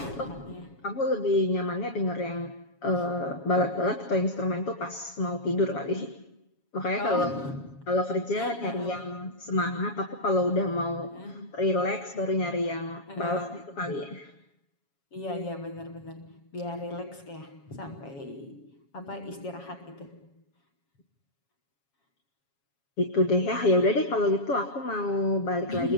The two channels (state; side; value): late; right; 7.2 ms